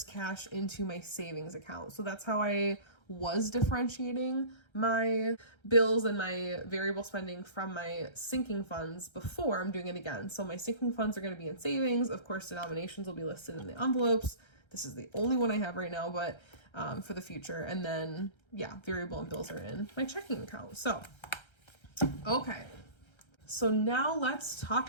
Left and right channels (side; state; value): right; late; 1.3 ms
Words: cash into my savings account. So that's how I was differentiating my bills and my variable spending from my sinking funds before I'm doing it again. So my sinking funds are going to be in savings. Of course, denominations will be listed in the envelopes. This is the only one I have right now, but for the future. And then, yeah, variable and bills are in my checking account. So, okay. So now let's